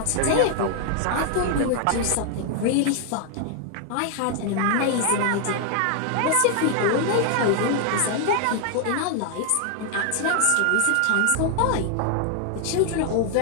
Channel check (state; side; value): different; both; correlation 0.00